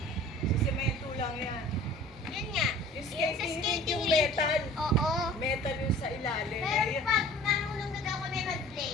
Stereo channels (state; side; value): normal; both; correlation 0.46